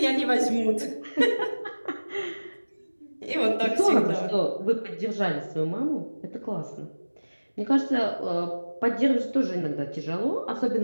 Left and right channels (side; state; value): both; inverted; correlation -1.00